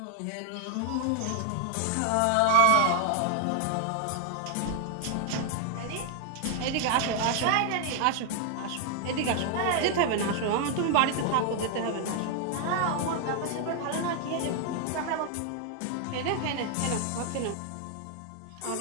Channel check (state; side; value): different; both; correlation 0.00